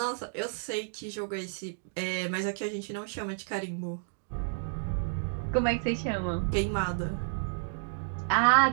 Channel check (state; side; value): silent; left; digital silence